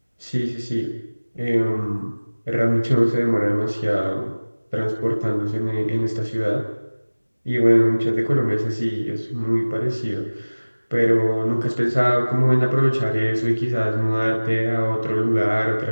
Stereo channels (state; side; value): inverted; both; correlation -1.00